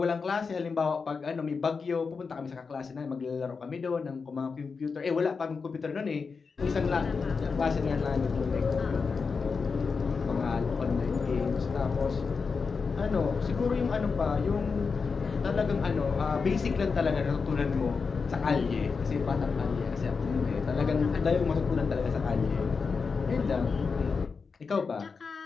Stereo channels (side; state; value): right; quieter; 5.0 dB